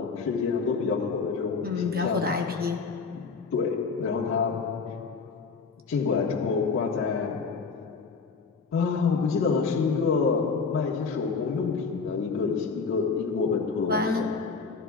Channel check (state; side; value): quieter; right; 4.9 dB